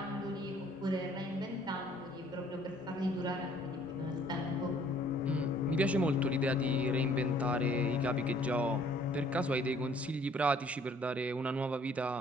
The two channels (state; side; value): normal; both; correlation 0.59